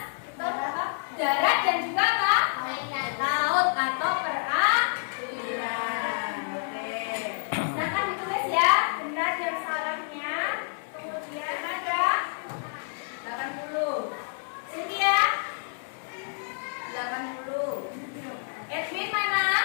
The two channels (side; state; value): right; silent; 59 dB below the other